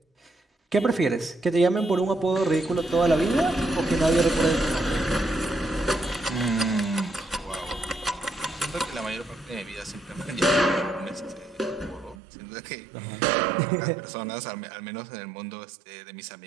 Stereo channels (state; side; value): drops out; left; at 12.2 s